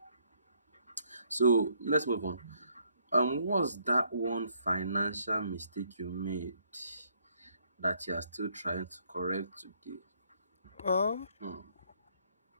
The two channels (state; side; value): inverted; both; correlation -0.69